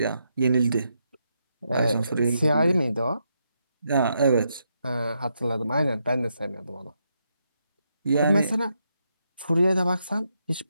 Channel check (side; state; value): both; inverted; correlation -0.81